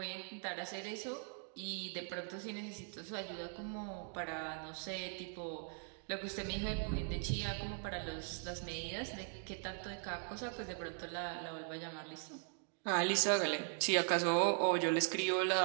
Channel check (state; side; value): silent; left; 51 dB below the other